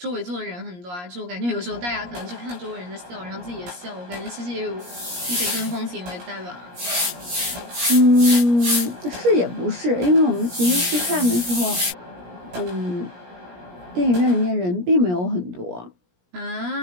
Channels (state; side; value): late; left; 17 ms